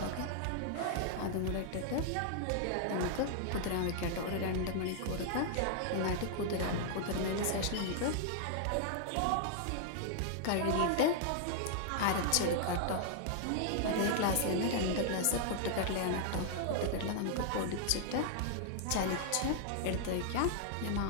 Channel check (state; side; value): different; both; correlation -0.01